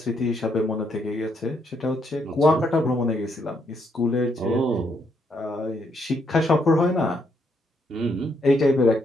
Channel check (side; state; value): both; normal; correlation 0.75